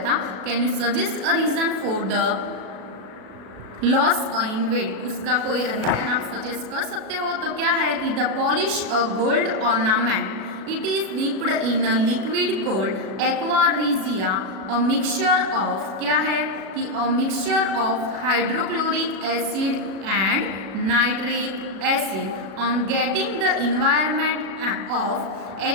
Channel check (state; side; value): late; left; 36 ms